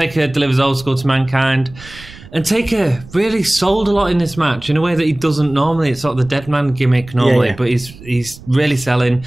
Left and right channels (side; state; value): right; noise; rumble, 19 dB below the sound